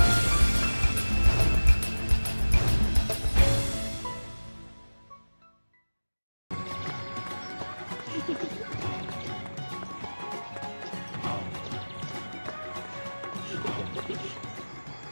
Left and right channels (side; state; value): both; inverted; correlation -1.00